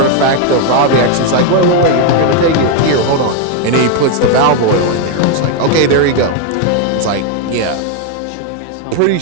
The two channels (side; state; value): both; different; correlation 0.01